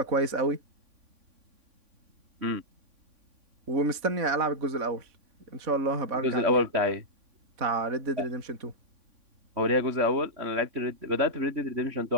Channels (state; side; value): late; left; 3.5 ms